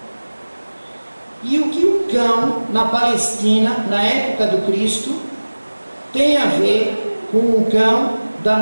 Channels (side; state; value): both; inverted; correlation -1.00